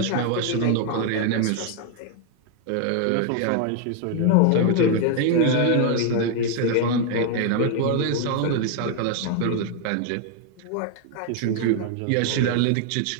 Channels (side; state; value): both; different; correlation 0.00